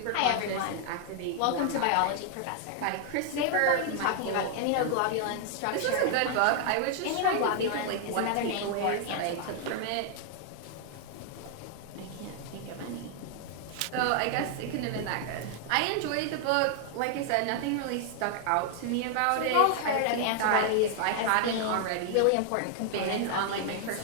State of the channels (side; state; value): both; different; correlation 0.00